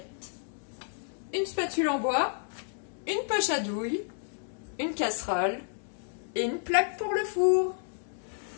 une spatule en bois, une poche à douille, une casserole et une plaque pour le four.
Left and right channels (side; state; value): right; silent; digital silence